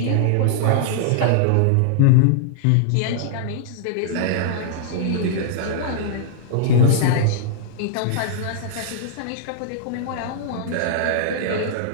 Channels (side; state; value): both; different; correlation -0.01